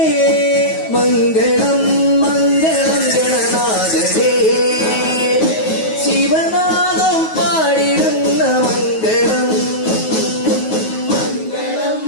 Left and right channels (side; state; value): right; late; 9.3 ms